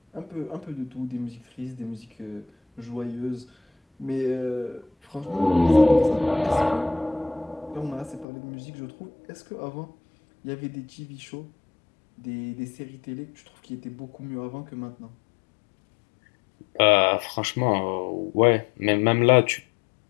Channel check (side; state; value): right; drops out; at 8.2 s